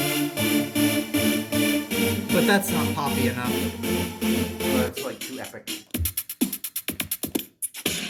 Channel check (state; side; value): identical; both; correlation 1.00